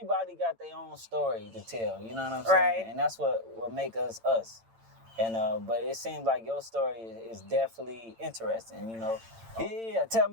got their own story to tell, you know what I'm saying? Right. And that's what make us us. And but it seems like your story is definitely interesting, you know. Yeah, tell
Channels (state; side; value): late; left; 8.9 ms